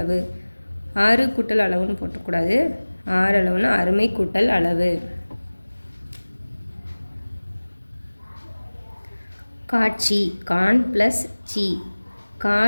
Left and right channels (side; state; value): both; inverted; correlation -1.00